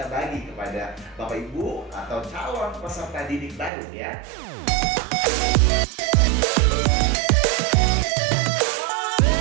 bagi kepada Bapak Ibu atau calon peserta didik baru ya.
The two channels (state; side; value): drops out; left; at 3.7 s